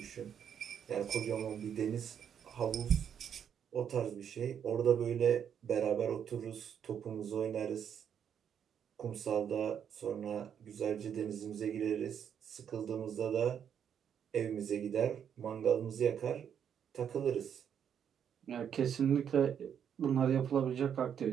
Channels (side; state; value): left; quieter; 8.4 dB